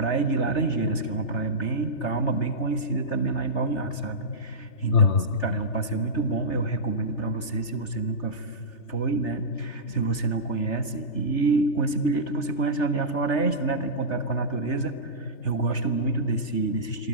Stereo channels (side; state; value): right; late; 3.3 ms